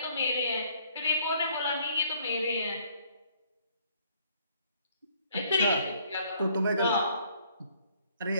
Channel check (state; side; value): inverted; both; correlation -0.62